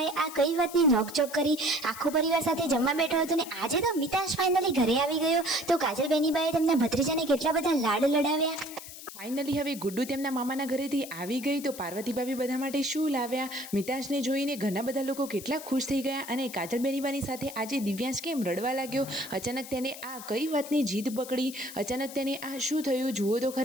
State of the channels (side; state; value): left; noise; hiss, 13 dB below the sound